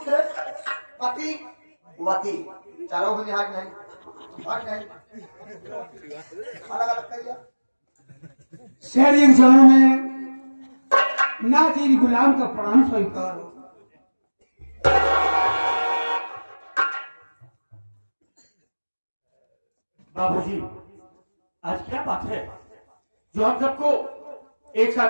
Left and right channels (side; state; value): both; inverted; correlation -1.00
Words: पति वती चलो भी हाथ नहीं अलग अलग करिए। शेर के चरणों में नाचिर गुलाम का प्रणाम स्वीकार। बाबूजी आज क्या बात है जो हम सबको एक साथ